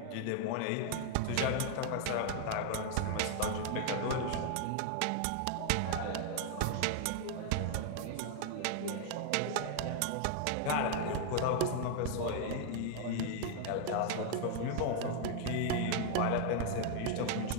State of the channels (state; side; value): different; both; correlation 0.00